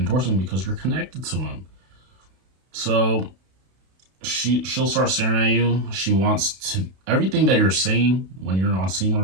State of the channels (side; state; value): left; late; 32 ms